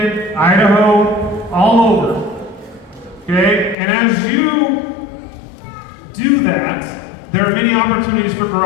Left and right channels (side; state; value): right; drops out; at 3.8 s